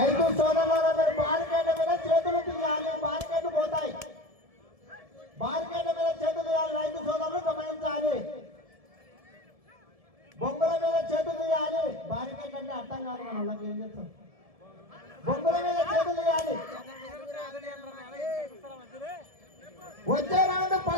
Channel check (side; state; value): left; late; 1.7 ms